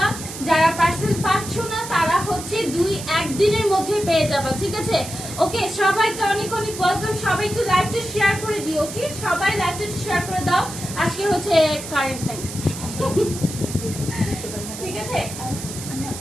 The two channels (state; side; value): noise; right; hiss, 10 dB below the sound